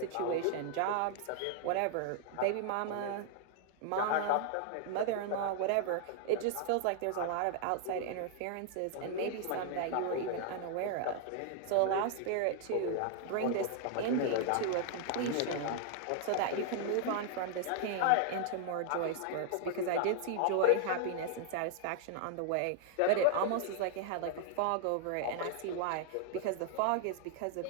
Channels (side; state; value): both; different; correlation 0.00